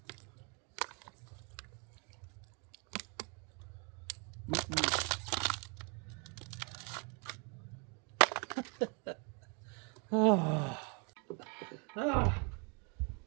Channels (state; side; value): quieter; left; 34.8 dB